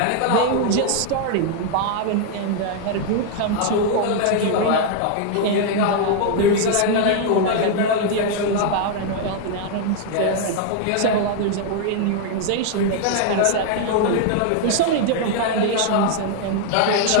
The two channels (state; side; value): different; both; correlation 0.00